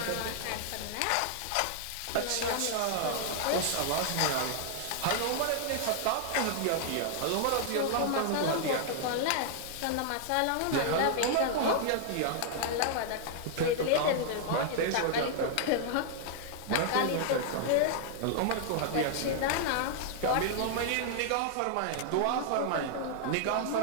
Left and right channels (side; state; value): both; different; correlation 0.00